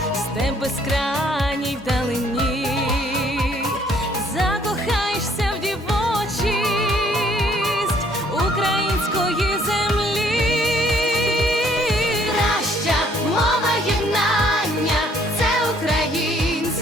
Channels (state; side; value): normal; both; correlation 0.63